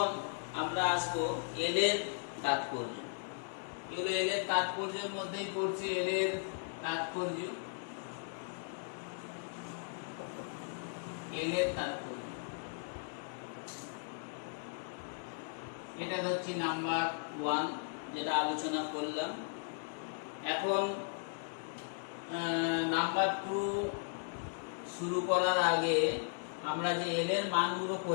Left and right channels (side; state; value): right; silent; digital silence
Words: আমরা আসবো এল এর তাৎপর্য। এগুলো এল এর তাৎপর্যের মধ্যেই পড়ছে। এল এর তাৎপর্য, এল এর তাৎপর্য এটা হচ্ছে নাম্বার 1 যেটা আলোচনা করলাম। এখন নাম্বার 2 শুরু করার আগে আমরা যে এল এর মানগুলো